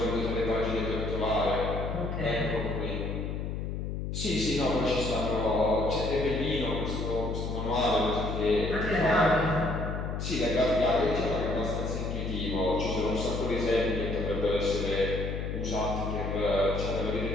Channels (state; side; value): noise; left; hum, 3 dB below the sound